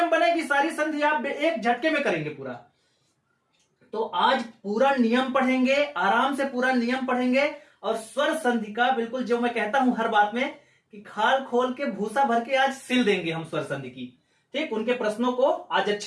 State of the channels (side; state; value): both; identical; correlation 1.00